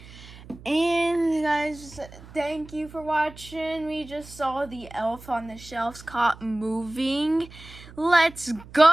And guys, thank you for watching. We just saw the elf on the shelves caught moving. Let's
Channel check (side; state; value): right; noise; hum, 19 dB below the sound